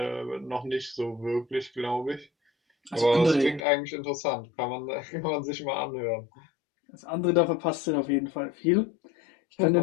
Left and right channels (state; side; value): drops out; right; at 3.6 s